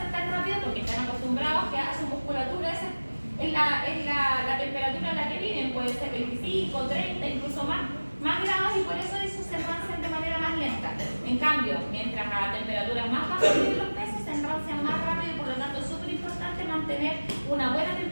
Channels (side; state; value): both; inverted; correlation -1.00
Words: tan rápido porque están acostumbrados que a su musculatura es la temperatura en la que viven, puede ser 25, 30, incluso más grados, y por eso se enrancian de manera más lenta. En cambio, mientras a temperaturas más bajas viven los peces, se enrancian más rápido y por lo tanto es súper importante mantener una buena